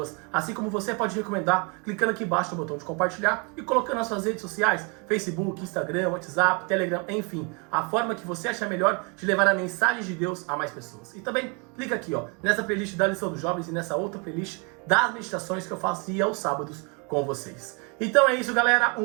assim como você pode recomendar clicando aqui embaixo no botão de compartilhar e colocando nas suas redes sociais, Facebook, Instagram, WhatsApp, Telegram, enfim, a forma que você achar melhor de levar a mensagem de Deus a mais pessoas. E também clica aqui, ó, nessa playlist da lição dos jovens e nessa outra playlist das meditações que eu faço aos sábados com vocês. Então é isso, galera.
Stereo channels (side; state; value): left; quieter; 33.1 dB